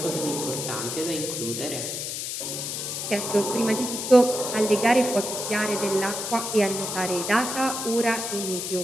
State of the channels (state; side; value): noise; left; hiss, 4 dB below the sound